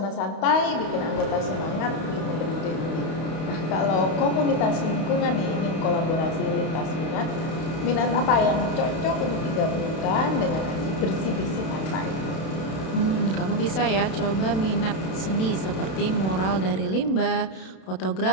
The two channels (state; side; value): late; right; 32 ms